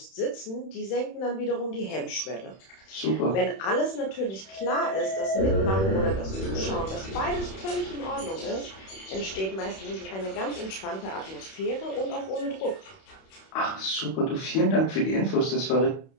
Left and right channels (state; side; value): late; right; 31 ms